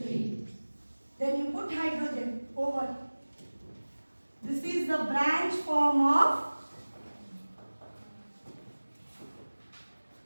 Then you put hydrogen over. This is the branch form of.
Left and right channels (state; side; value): inverted; both; correlation -1.00